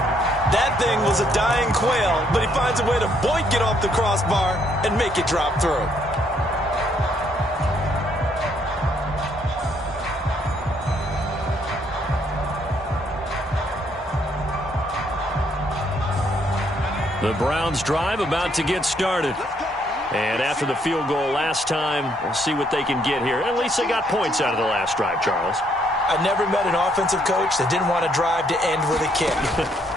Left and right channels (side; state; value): both; normal; correlation 0.70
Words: That thing was a dying quail, but he finds a way to boink it off the crossbar and make it drop through. The Browns drive about to get started. And after the field goal last time, we'll see what they can get here. At least they got points out of the last drive, Charles. I never met an offensive coach that didn't want to drive to end with a kick.